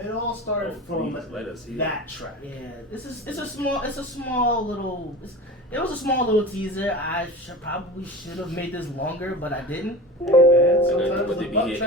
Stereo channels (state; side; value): normal; both; correlation 0.32